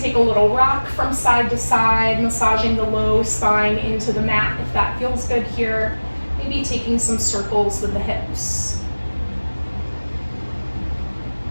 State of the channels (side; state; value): both; inverted; correlation -1.00